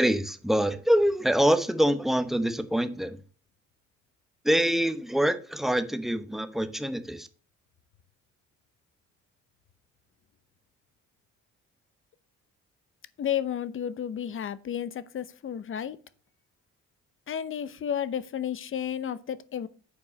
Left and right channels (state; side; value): normal; both; correlation 0.82